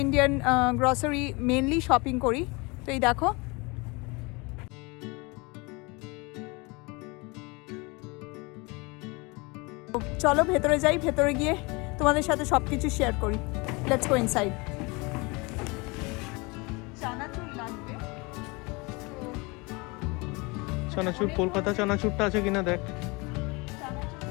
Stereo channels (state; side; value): quieter; right; 26.9 dB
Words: ইন্ডিয়ান গ্রসারি মেনলি শপিং করি। তো এই দেখো, চলো ভেতরে যাই, ভেতরে গিয়ে তোমাদের সাথে সব কিছু শেয়ার করি। Let's go inside. চানাচুর লাগবে, চানাচুর কলকাতা চানাচুরটা আছে কিনা দেখ।